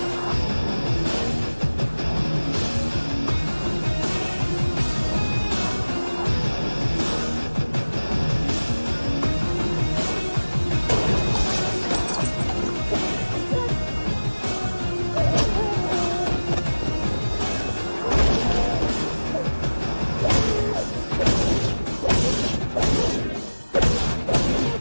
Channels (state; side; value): inverted; both; correlation -1.00